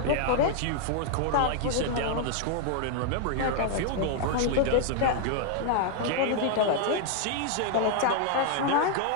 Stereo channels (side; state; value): both; different; correlation 0.00